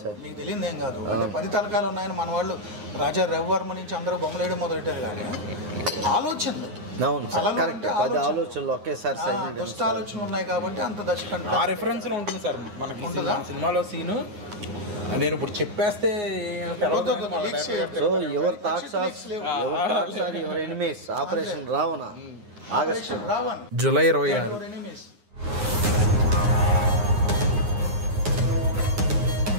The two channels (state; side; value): late; left; 9.6 ms